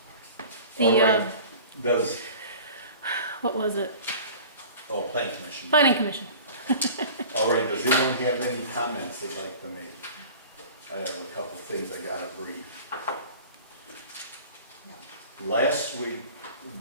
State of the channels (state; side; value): inverted; both; correlation -0.41